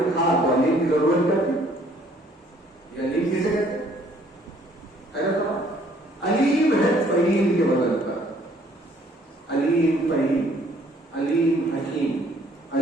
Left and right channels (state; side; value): normal; both; correlation 0.61